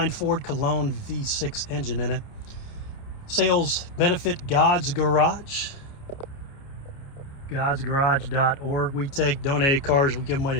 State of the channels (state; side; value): late; right; 29 ms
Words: Ford Cologne V6 engine in it. Sales benefit God's Garage, godsgarage.org. We take donated cars, we give them away